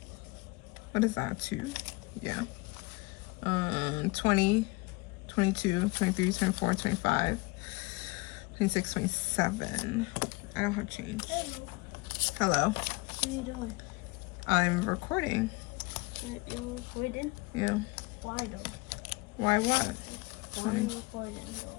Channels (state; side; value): quieter; right; 24.8 dB